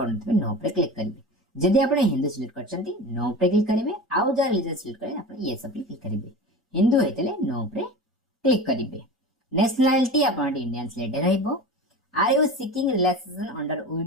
नो पे क्लिक करिवे जदि आपण हिंदू सिलेक्ट करछंती नो पे क्लिक करिवे आउ जा रिलीजियस सिलेक्ट करे आपण ये सब क्लिक करिवे हिंदू हेतले नो पे क्लिक करिवे नेशनलिटी आपण इंडियन सिलेक्ट रहइबो are you seeking relaxation under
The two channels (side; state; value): both; normal; correlation 0.31